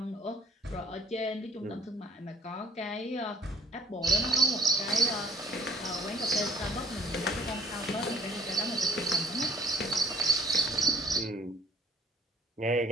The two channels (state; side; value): normal; both; correlation 0.55